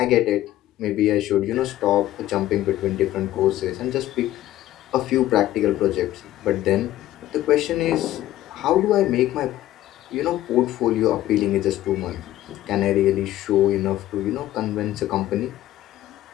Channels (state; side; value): quieter; right; 14.2 dB